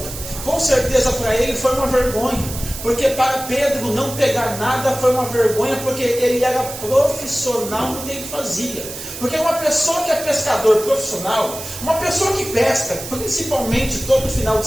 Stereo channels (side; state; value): right; noise; hiss, 10 dB below the sound